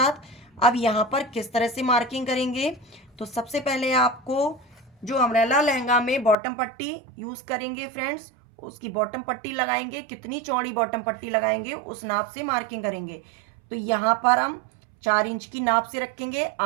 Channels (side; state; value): left; drops out; at 6.4 s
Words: अब यहाँ पर किस तरह से मार्किंग करेंगे, तो सबसे पहले आपको जो अम्ब्रेला लहंगा में बॉटम पट्टी यूज़ करेंगे फ्रेंड्स, उसकी बॉटम पट्टी लगाएंगे, कितनी चौड़ी बॉटम पट्टी लगाएंगे उस नाप से मार्किंग करेंगे। तो यहाँ पर हम 4 इंच की नाप से रखेंगे,